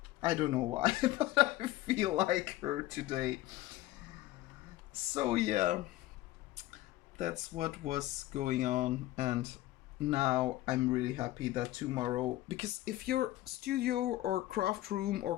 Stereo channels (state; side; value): quieter; right; 16.3 dB